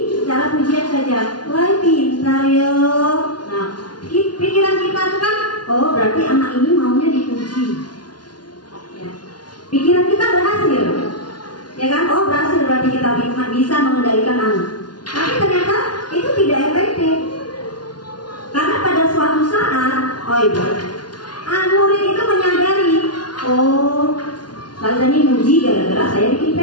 secara pujian saja, wah pintar yo. Nah, pikiran kita itu kan, oh berarti anak ini maunya dipuji. Pikiran kita berhasil, ya kan? Oh berhasil, berarti kita bisa mengendalikan anak. Tapi ternyata itu tidak efektif, karena pada suatu saat, murid itu menyadari, oh Ustazah ini muji gara-gara saya bikin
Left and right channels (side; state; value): right; late; 0.70 ms